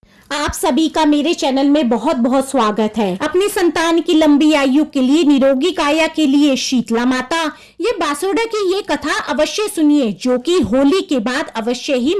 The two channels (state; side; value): identical; both; correlation 1.00